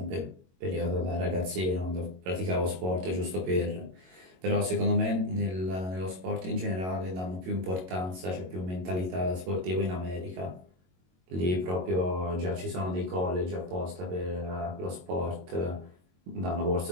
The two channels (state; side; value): late; left; 22 ms